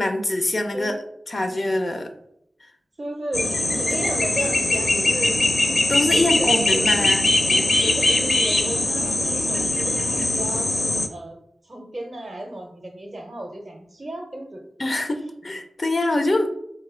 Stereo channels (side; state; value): both; normal; correlation 0.95